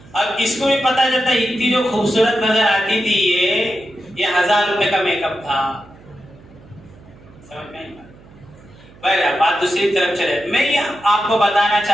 اب اس کو بھی پتا چلتا ہے اتنی جو خوبصورت نظر آتی تھی یہ 1000 روپے کا میک اپ تھا. سمجھ میں بات دوسری طرف چلے. میں یہ آپ کو بتانا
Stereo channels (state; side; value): noise; right; hum, 24 dB below the sound